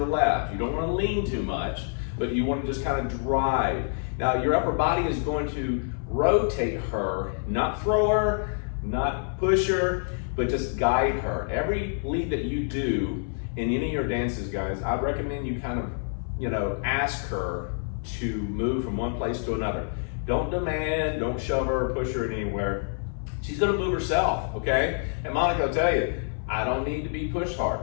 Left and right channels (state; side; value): silent; right; 60 dB below the other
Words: left. You don't want to lean too much, but you want to just kind of drive. Now, your upper body is going to rotate her, not throw her, not push her, but just guide her. Every lead that you do in any of your dances, guys, I'd recommend you kind of, ask her to move from one place to another. Don't demand, don't shove her or push her anywhere. She's gonna move herself, okay? And Monica will tell you, I don't need to be pushed hard.